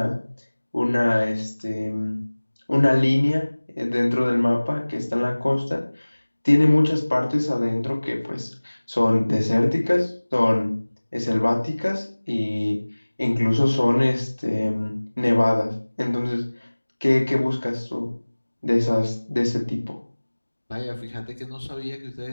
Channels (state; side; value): inverted; both; correlation -1.00